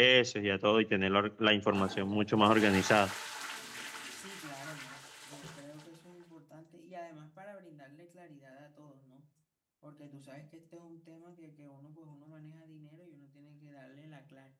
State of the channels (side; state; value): both; identical; correlation 1.00